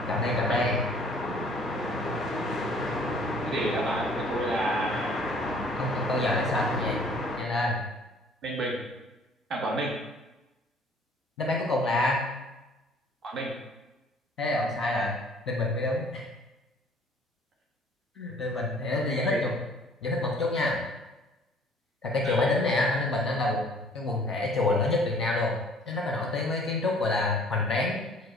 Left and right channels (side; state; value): both; normal; correlation 0.55